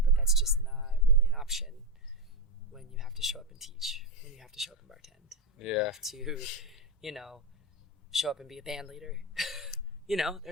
but that's just not really an option when you have to show up and teach, when you have to show up and bartend. You have to, you know, show up and be a band leader. You know,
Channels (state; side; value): normal; both; correlation 0.10